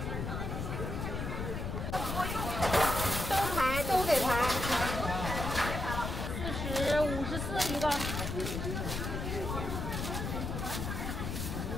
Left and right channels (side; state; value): left; noise; rumble, 3 dB below the sound